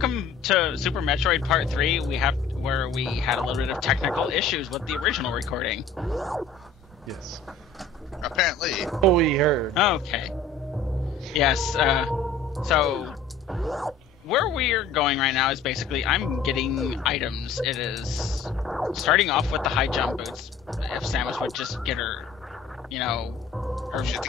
to Super Metroid Part 3. Where we had a little bit of technical issues with the original recording. Yes. Apparently. Oh, we heard. Okay. Yes, so where we're going right now is basically I'm getting items. It is starting off with the high jump boots. If Samus would just get her, her Shit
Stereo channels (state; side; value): quieter; right; 4.5 dB